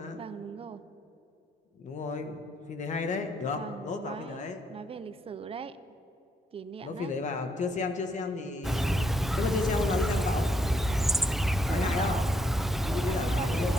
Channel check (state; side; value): normal; both; correlation 0.74